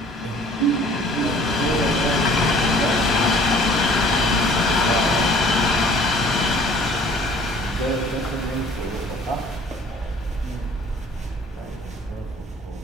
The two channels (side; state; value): both; normal; correlation 0.53